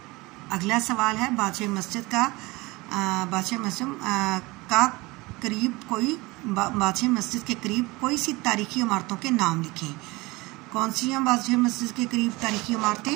अगला सवाल है बादशाही मस्जिद का बादशाही मस्जिद के करीब कोई सी तारीखी इमारतों के नाम लिखें। कौन सी हैं बादशाही मस्जिद के करीब तारीखी इमारतें?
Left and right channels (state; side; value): quieter; left; 22.8 dB